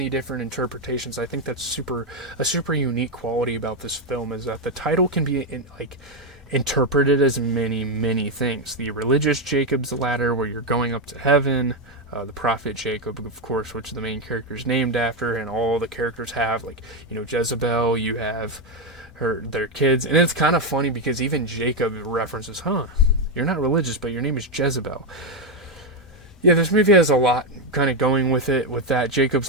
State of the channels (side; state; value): both; normal; correlation 0.05